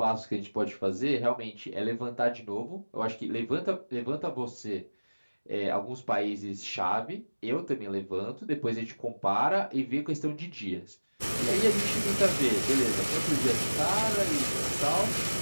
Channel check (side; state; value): both; inverted; correlation -1.00